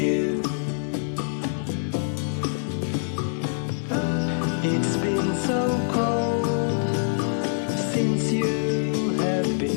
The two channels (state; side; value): silent; right; digital silence